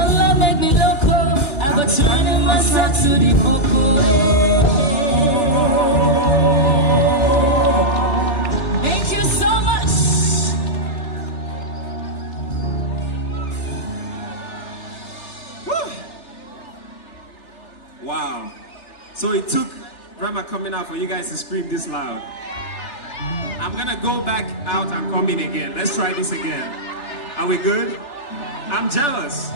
make me loco. I go turning myself to the popo. Thank you so much. Woo. Wow. So it took Rema coming out for you guys to scream this loud. I'm gonna go back out and come in again. Let's try this again. Are we good? I'm jealous.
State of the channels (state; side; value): late; right; 3.4 ms